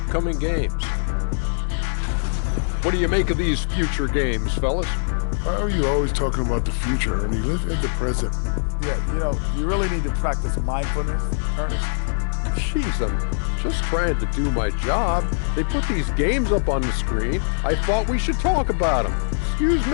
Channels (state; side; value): silent; right; digital silence